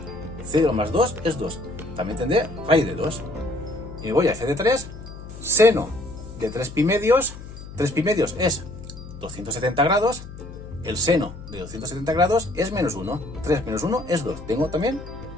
0 más 2 es 2. También tendré raíz de 2. Y me voy a f de 3. Seno de 3 pi medios. 3 pi medios es 270 grados. El seno de 270 grados es menos 1. 3 menos 1 es 2. Tengo también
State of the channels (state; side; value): noise; left; hum, 13 dB below the sound